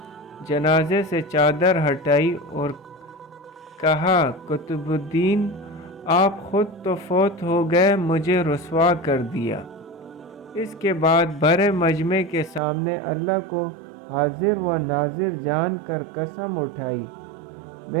جنازے سے چادر ہٹائی اور کہا، قطب الدین آپ خود تو فوت ہو گئے، مجھے رسوا کر دیا۔ اس کے بعد بھرے مجمع کے سامنے اللہ کو حاضر و ناظر جان کر قسم اٹھائی،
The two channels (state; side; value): drops out; left; at 12.6 s